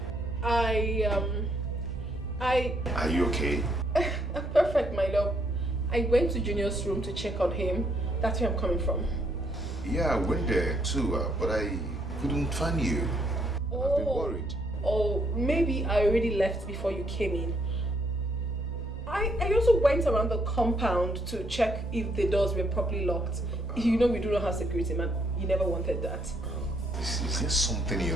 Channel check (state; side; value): normal; both; correlation 0.71